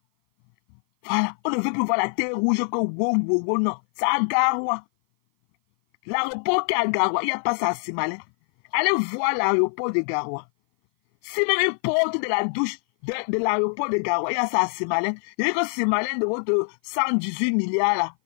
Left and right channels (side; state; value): right; silent; 56 dB below the other